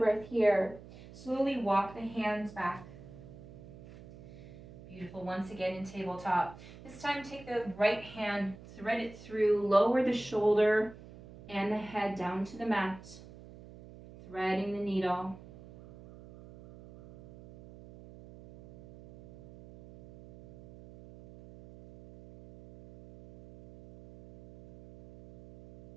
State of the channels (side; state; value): right; noise; hum, 18 dB below the sound